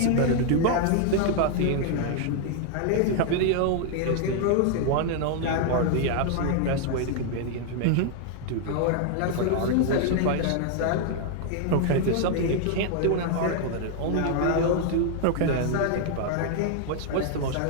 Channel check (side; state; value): both; different; correlation 0.00